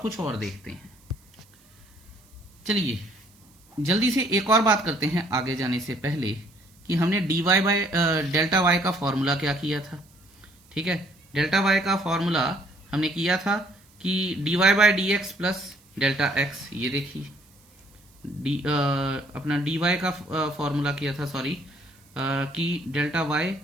और देखते हैं। चलिए जल्दी से एक और बात करते हैं आगे जाने से पहले कि हमने dy बाय डेल्टा y का फॉर्मूला क्या किया था, ठीक है। डेल्टा y का फॉर्मूला हमने किया था कि dy by dx plus delta x। ये देखिए अपना dy का फॉर्मूला किया था, सॉरी, कि delta y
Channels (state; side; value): noise; right; hiss, 30 dB below the sound